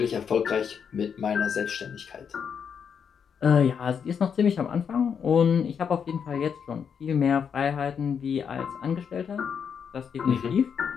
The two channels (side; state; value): right; quieter; 7.1 dB